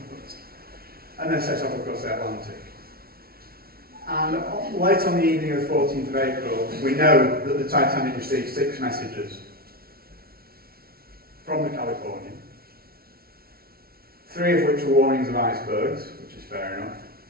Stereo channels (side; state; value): left; late; 0.44 ms